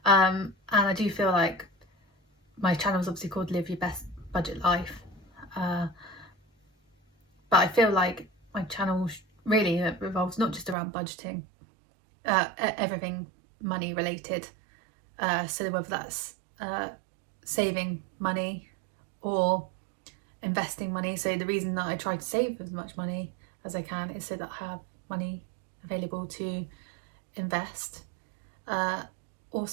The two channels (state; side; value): drops out; left; at 10.8 s